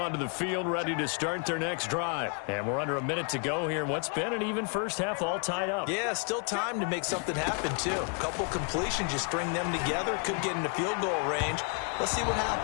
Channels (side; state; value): right; quieter; 38.5 dB